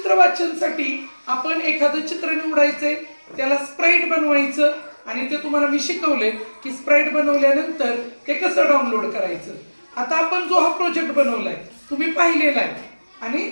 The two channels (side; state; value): both; inverted; correlation -1.00